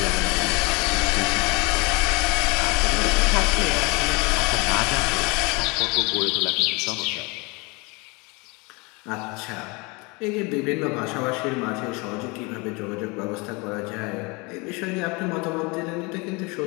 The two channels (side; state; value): right; quieter; 27.5 dB